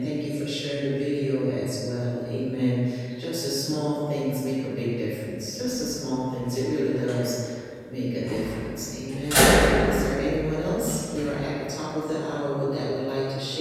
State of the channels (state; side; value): identical; both; correlation 1.00